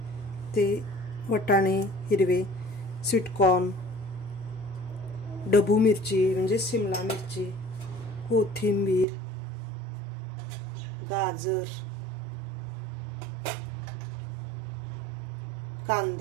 ते वटाणे हिरवे, स्वीट कॉर्न, ढबू मिरची म्हणजे शिमला मिरची, कोथिंबीर, गाजर,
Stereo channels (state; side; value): drops out; left; at 9.1 s